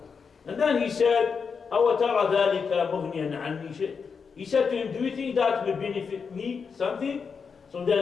And then he said, أَوَ تَرَى ذَلِكَ مُغْنِيًا عَنِّي شَيْءٍ. He said to him, do you think that will benefit me something? So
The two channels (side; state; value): right; quieter; 5.7 dB